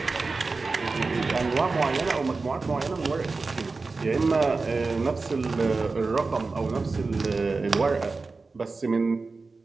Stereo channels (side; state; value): left; quieter; 3.9 dB